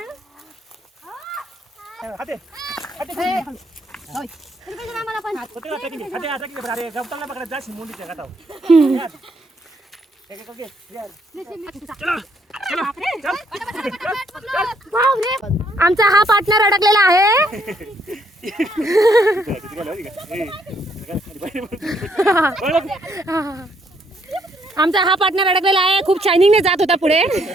पण हाते आम्हाला पण अरे गवताला पकडा जाशी मुंडीच्या गाठाव. आमचा हा पार्टनर अडकलेला आहे. आमचा हा पार्टनर अडकलेला आहे. खूप शायनिंगने जात होता पुढे.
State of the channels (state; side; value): normal; both; correlation 0.70